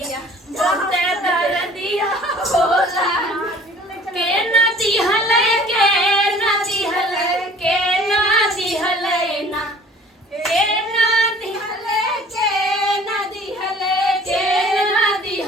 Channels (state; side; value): normal; both; correlation 0.50